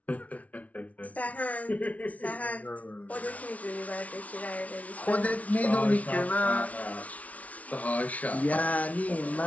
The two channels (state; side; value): late; right; 0.068 ms